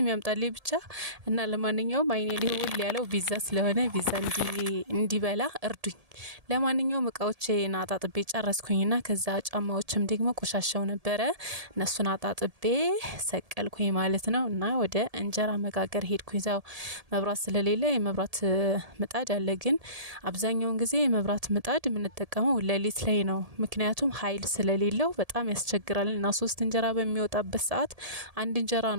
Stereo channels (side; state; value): left; late; 1.7 ms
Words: ያምጣልኝ ብቻ እና ለማንኛውም አይኔ ሊውል ያለው ቢዛ ስለሆነ ቢዛ እንዲበላ እርዱኝ። ለማንኛውም እቃዎቼን አጣጥቤ ጨረስኩኝና ከዛ ጫማዎችም ደግሞ ቆሻሻው ነበረ እነሱን አጣጥቤ ሰቀልኩኝ ማለት ነው። እና ወደ እንጀራ መጋገር ሄድኩኝ። ዛው መብራት ስለሌለ የመብራት ምጣድ አለ፣ ግን አብዛኛውን ጊዜ የመብራት ምጣድ የምንጠቀመው ሌሊት ላይ ነው። ምክንያቱም ኃይል ስለሌለው በጣም ያስቸግራል እና 3 እንጀራ በሚወጣበት ሰዓት አንድ እንጀራ